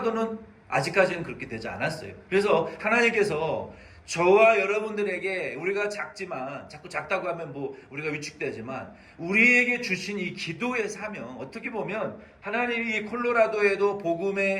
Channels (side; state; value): both; identical; correlation 1.00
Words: 아직까지는 그렇게 되지 않았어요. 그래서 하나님께서 저와 여러분들에게 우리가 작지만 자꾸 작다고 하면 우리가 위축되지만 우리에게 주신 이 기도의 사명 어떻게 보면 하나님이 이 콜로라도에도